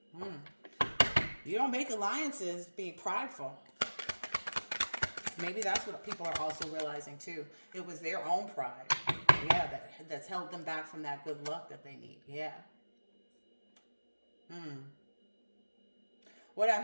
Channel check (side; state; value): both; inverted; correlation -1.00